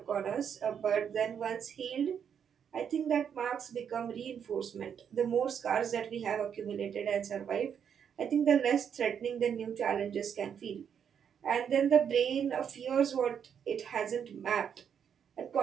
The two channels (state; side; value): quieter; left; 7.9 dB